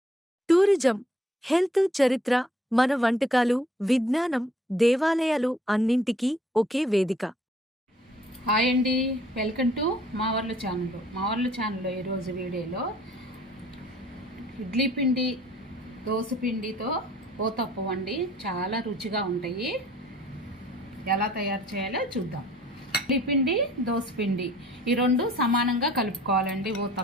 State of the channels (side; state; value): both; normal; correlation 0.58